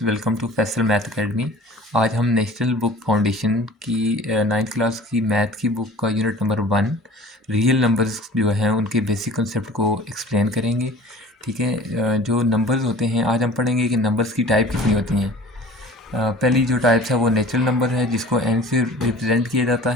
welcome to Faisal math academy. आज हम नेशनल बुक फाउंडेशन की नाइन्थ क्लास की मैथ की बुक का यूनिट नंबर 1 रियल नंबर्स जो हैं उनके बेसिक कंसेप्ट को एक्सप्लेन करेंगे। ठीक है। जो नंबर्स होते हैं आज हम पढ़ेंगे कि नंबर्स की टाइप कितनी होती हैं। पहली जो टाइप्स है वो नेचुरल नंबर है जिसको n से रिप्रेजेंट किया जाता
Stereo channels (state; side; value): normal; both; correlation 0.44